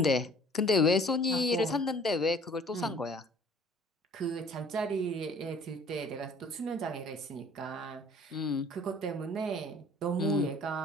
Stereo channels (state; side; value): normal; both; correlation 0.53